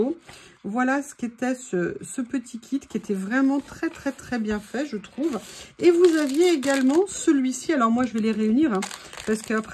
Voilà ce qu'était ce petit kit qui était vraiment très bien fait, je trouve. Et vous aviez également celui-ci. Alors moi, je vais les réunir hein, parce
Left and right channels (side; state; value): both; identical; correlation 1.00